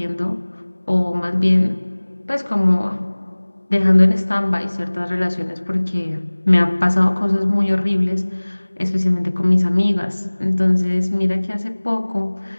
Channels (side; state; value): both; inverted; correlation -1.00